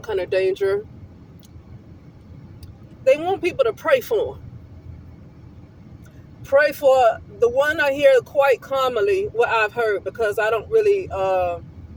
kind of danger, they want people to pray for them. Pray for the one I hear quite commonly, what I've heard, because I don't really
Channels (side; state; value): both; identical; correlation 1.00